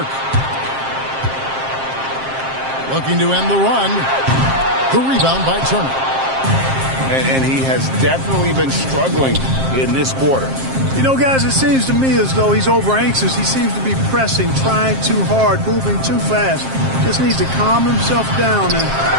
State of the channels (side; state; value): left; late; 7.5 ms